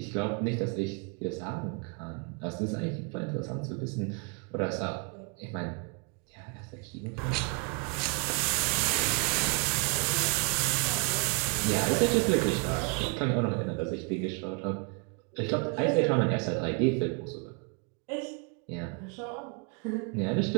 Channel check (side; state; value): left; quieter; 32.0 dB